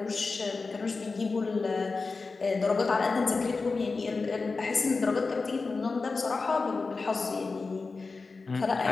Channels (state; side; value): quieter; right; 4.1 dB